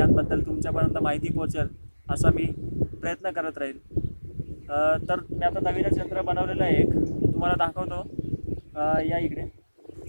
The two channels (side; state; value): both; inverted; correlation -1.00